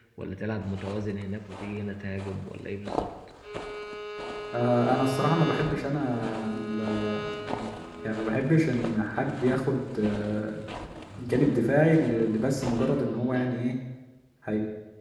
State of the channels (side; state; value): both; identical; correlation 1.00